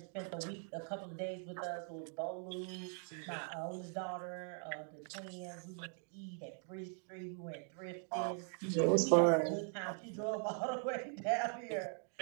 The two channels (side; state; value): left; silent; 50 dB below the other